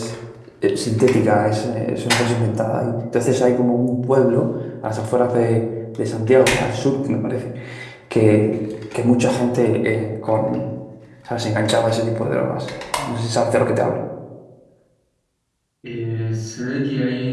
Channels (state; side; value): identical; both; correlation 1.00